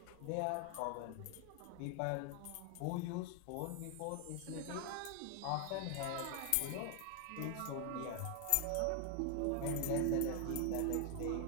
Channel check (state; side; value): different; both; correlation 0.00